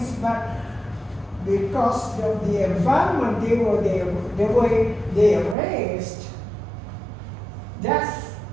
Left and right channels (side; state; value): left; drops out; at 5.6 s